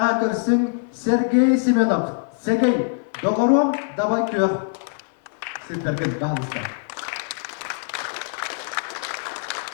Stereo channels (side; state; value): right; silent; 60 dB below the other